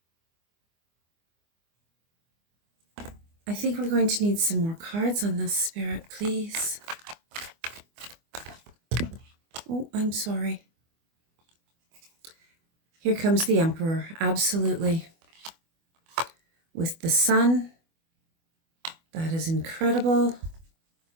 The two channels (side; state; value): left; late; 24 ms